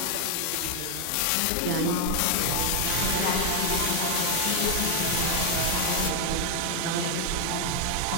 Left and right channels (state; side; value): different; both; correlation 0.01